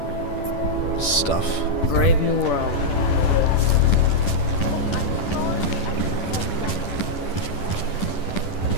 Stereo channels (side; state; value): right; late; 10 ms